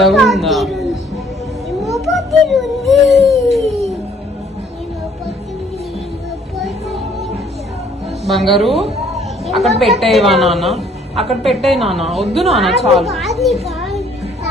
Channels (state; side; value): normal; both; correlation 0.61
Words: ఉందా? బంగారు అక్కడ పెట్టేవా నాన్న? అక్కడ పెట్టేయి నాన్న. వద్దు నాన్న, చాలు